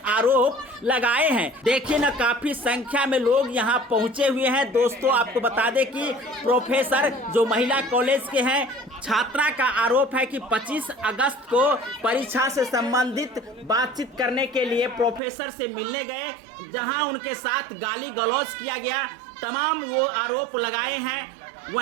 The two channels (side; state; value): left; drops out; at 15.2 s